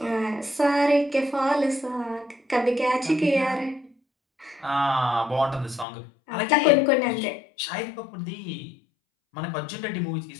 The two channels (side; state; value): right; drops out; at 5.9 s